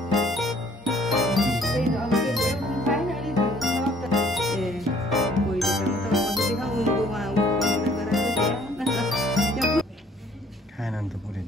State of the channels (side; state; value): both; normal; correlation 0.59